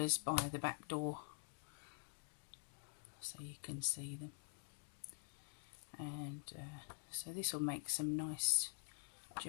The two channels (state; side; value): silent; right; digital silence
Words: by the back door so you can see them. And so this will make some nice